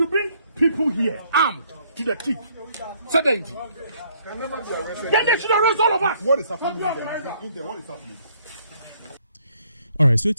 bring people here armed to the teeth. Then they should arrest all of us. What is happening in there? What is happening? All right, so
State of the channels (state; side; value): inverted; both; correlation -0.65